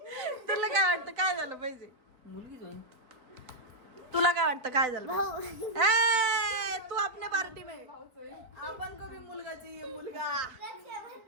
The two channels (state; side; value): late; left; 3.9 ms